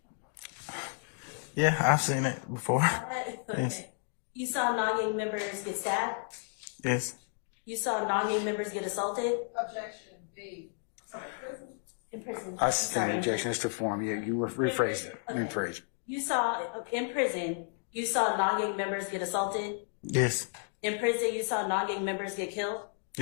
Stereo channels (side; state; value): right; silent; 56 dB below the other